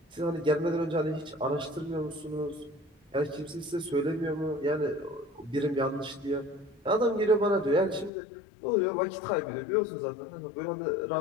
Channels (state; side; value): drops out; right; at 8.1 s